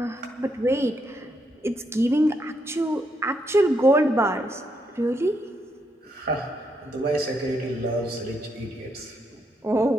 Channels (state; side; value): normal; both; correlation 0.78